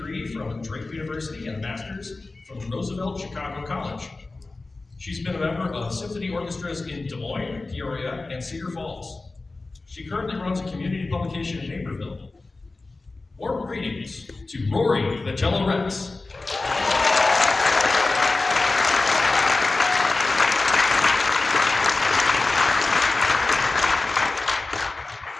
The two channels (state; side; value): quieter; right; 3.4 dB